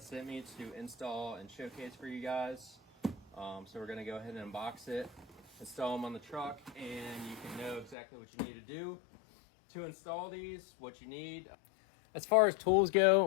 sent me to install and showcase for you guys. So we're going to go ahead and unbox it, install them on the truck, and you can know exactly what you need to do to install these, what you need. As far as tools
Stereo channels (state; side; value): drops out; right; at 8.0 s